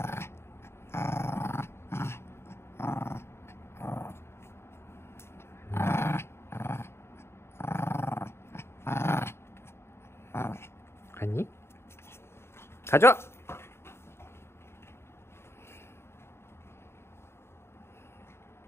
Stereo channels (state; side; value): late; right; 0.12 ms